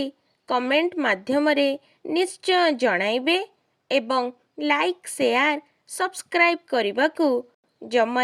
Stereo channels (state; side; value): identical; both; correlation 1.00